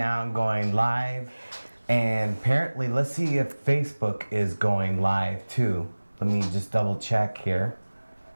going live. And apparently, let's see if Facebook is going live too. Let me just double check here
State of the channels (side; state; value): both; inverted; correlation -1.00